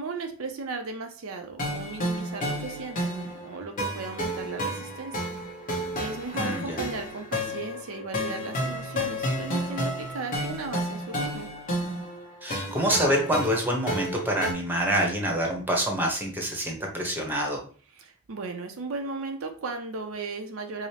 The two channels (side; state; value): both; normal; correlation 0.23